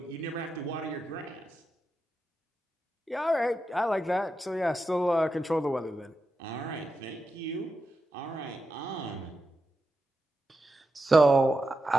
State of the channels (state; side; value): normal; both; correlation 0.88